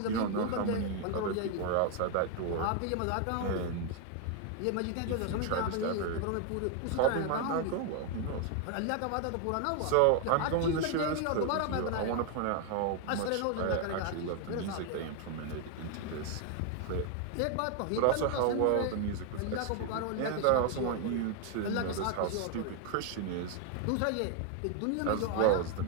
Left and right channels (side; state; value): both; different; correlation 0.00